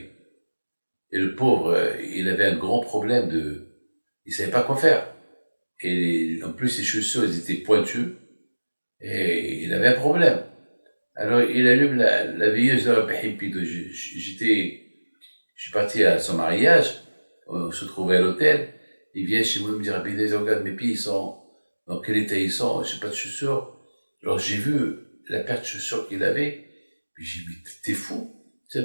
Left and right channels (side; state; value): both; inverted; correlation -1.00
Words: Et le pauvre, il avait un grand problème il ne savait pas quoi faire. Et en plus, ses chaussures, elles étaient pointues. Et il avait un problème. Alors, il allume la veilleuse de la Pépito. Je suis parti à son mariage. On se trouvait à l'hôtel. Il vient chez moi me dire, regarde, mes pieds, ils sont, dans quel état ils sont, je n'ai pas de chaussures. Alors j'ai vu la paire de chaussures qu'il avait, puis j'ai dit, t'es fou, tu as